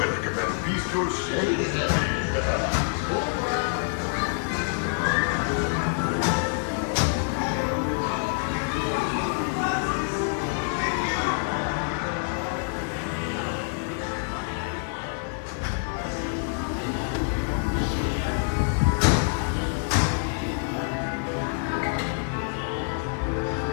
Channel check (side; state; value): right; silent; 55 dB below the other